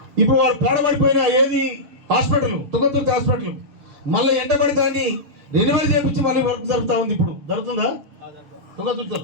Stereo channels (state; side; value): late; left; 7.0 ms